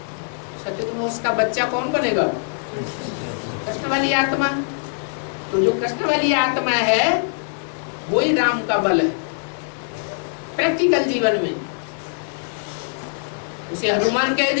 सत्य में उसका बच्चा कौन बनेगा? कृष्ण वाली आत्मा। तो जो कृष्ण वाली आत्मा है वही राम का बल है प्रैक्टिकल जीवन में। उसे हनुमान कह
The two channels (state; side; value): silent; right; digital silence